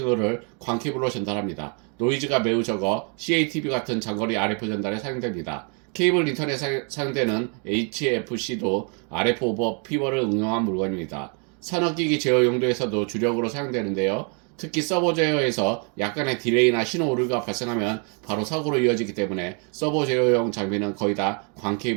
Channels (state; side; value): quieter; left; 37.4 dB